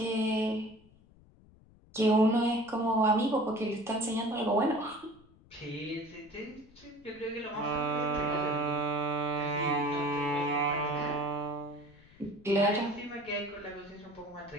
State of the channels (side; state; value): left; noise; rumble, 26 dB below the sound